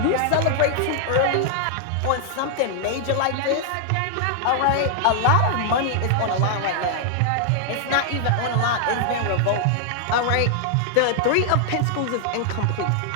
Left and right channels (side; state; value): both; different; correlation -0.01